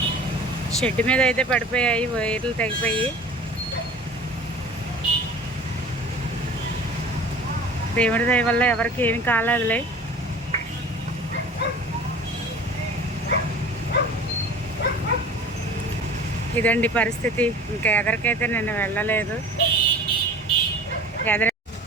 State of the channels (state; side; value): normal; both; correlation 0.42